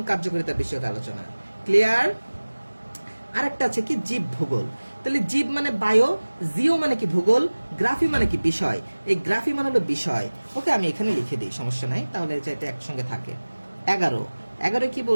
কার্যকারিতা বিষয়ক আলোচনা। ক্লিয়ার? আরেকটা আছে কি জীব ভূগোল। তাহলে জীব মানে বায়ো, জিও মানে কি ভূগোল, গ্রাফি মানে কি বিষয়। এই গ্রাফি মানে হলো বিষয়। ওকে, আমি এখানে লিখে দিই, সমস্যা নাই, তাহলে যাতে একসঙ্গে থাকে। 11 11 কি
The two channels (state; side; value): inverted; both; correlation -1.00